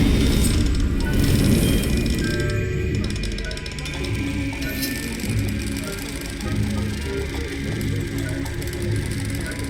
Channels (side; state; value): both; identical; correlation 1.00